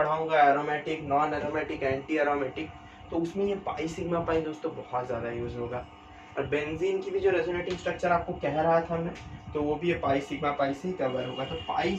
aromatic, non aromatic, anti aromatic, तो उसमें ये पाई सिग्मा पाई दोस्तों बहुत ज़्यादा यूज होगा। और बेंजीन की भी जो रेजोनेटिंग स्ट्रक्चर आपको कह रहा था मैं, तो वो भी ये पाई सिग्मा पाई से ही कवर होगा। तो पाई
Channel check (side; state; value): both; identical; correlation 1.00